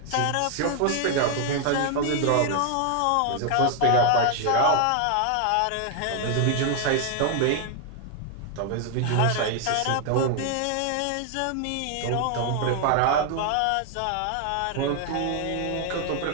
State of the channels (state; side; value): different; both; correlation 0.00